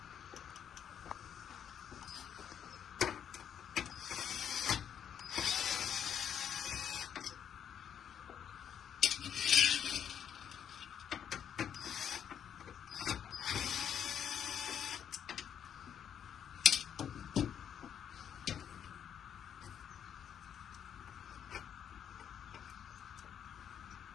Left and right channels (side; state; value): right; quieter; 8.8 dB